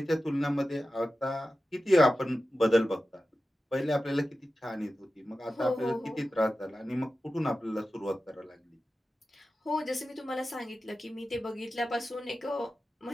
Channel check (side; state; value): both; normal; correlation 0.94